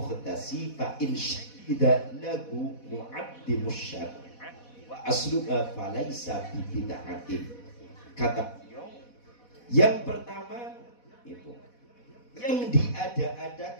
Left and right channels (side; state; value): right; late; 4.1 ms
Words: fa in syahida lahu mu'addimus syari'ah wa asluha falaysa bi bid'atin. Kata yang pertama itu yang